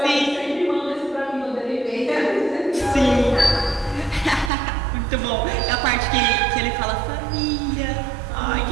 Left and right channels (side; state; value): left; drops out; at 4.5 s